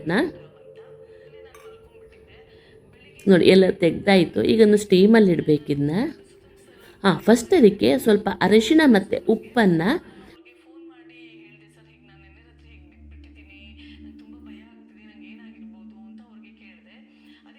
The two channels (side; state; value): both; identical; correlation 1.00